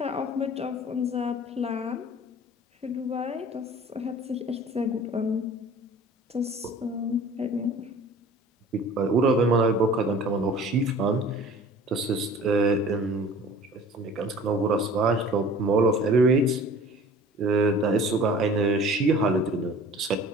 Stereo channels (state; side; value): normal; both; correlation 0.45